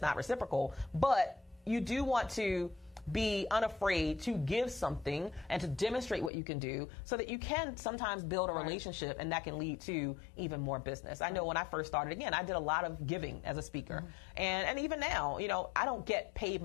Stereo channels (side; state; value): right; drops out; at 6.3 s